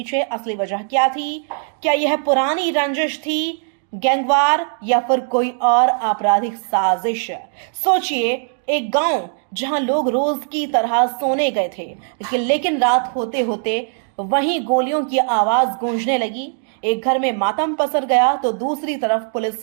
असली वजह क्या थी। क्या यह पुरानी रंजिश थी, गैंगवार, या फिर कोई और आपराधिक साजिश। सोचिए, एक गांव जहां लोग रोज की तरह सोने गए थे, लेकिन रात होते होते वहीं गोलियों की आवाज गूंजने लगी। एक घर में मातम पसर गया तो दूसरी तरफ पुलिस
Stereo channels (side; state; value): left; silent; 62 dB below the other